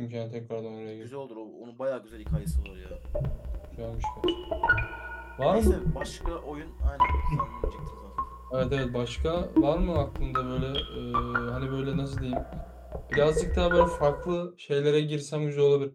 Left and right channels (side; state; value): both; identical; correlation 1.00